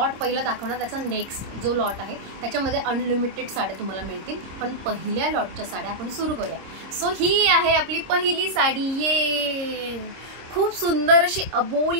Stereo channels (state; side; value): late; left; 26 ms